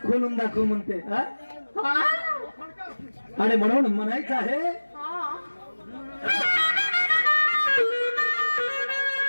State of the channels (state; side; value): inverted; both; correlation -1.00